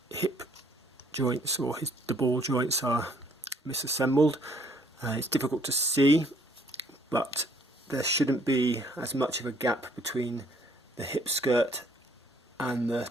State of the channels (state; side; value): normal; both; correlation 0.64